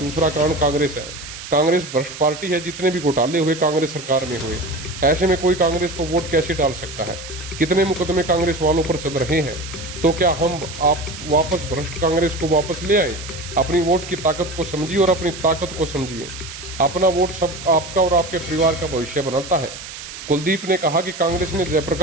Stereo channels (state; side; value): noise; right; hiss, 12 dB below the sound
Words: कारण कांग्रेस है। कांग्रेस भ्रष्ट पार्टी है, जितने भी घोटाले हुए कांग्रेस सरकार में हुए। ऐसे में कोई कांग्रेस को वोट कैसे डाल सकता है। कितने मुकदमे कांग्रेस वालों पर चल रहे हैं, तो क्या हम आप वापस भ्रष्ट कांग्रेस को वापस ले आए। अपनी वोट की ताकत को समझिए और अपनी ताकत को समझिए। अपना वोट सब आपका और आपके परिवार का भविष्य बनाता है। कुलदीप ने कहा कि कांग्रेस ने